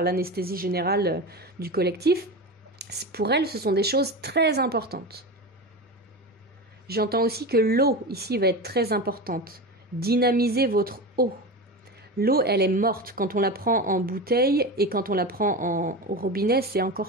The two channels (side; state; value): both; normal; correlation 0.25